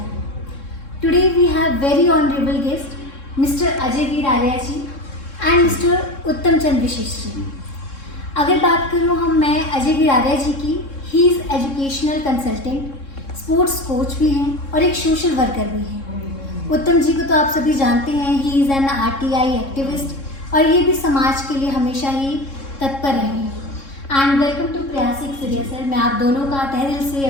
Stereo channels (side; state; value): right; late; 3.7 ms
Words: Today we have very honorable guest, Mr. Ajay Veer Arya ji and Mr. Uttam Chand Vishesh ji. अगर बात करूँ मैं अजय वीर आर्या जी की, he is educational consultant, sports coach भी हैं और एक social worker भी हैं। उत्तम जी को तो आप सभी जानते हैं, he is an RTI activist और ये भी समाज के लिए हमेशा ही तत्पर रहे हैं। एंड वेलकम टू प्रयास एक्सेलियर सर। मैं आप दोनों का तहे दिल से